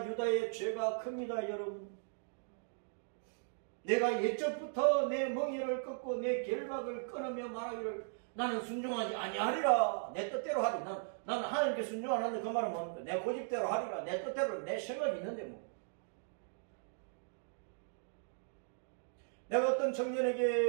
유다의 죄가 큽니다. 여러분. 내가 예적부터 내 멍에를 꺾고 내 결박을 끊으며 말하기를 나는 순종하지 아니하리라. 내 뜻대로 하리. 나는 하나님께 순종 안 하는데 그 말은 뭡니까? 내 고집대로 하리라. 내 뜻대로 내 생각이 있는데 뭐. 내가 어떤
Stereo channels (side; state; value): left; silent; digital silence